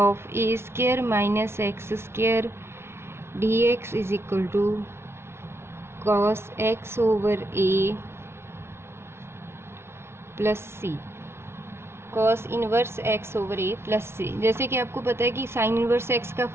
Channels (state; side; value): late; left; 0.12 ms